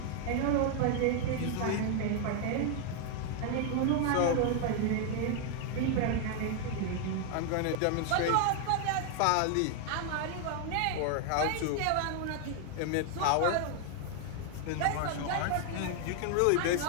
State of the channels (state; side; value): different; both; correlation 0.00